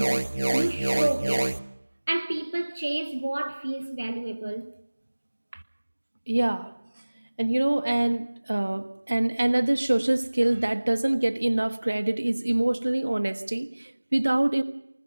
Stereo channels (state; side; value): inverted; both; correlation -1.00